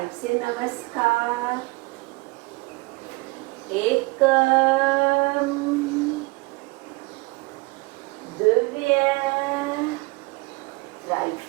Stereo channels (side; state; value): left; quieter; 25.4 dB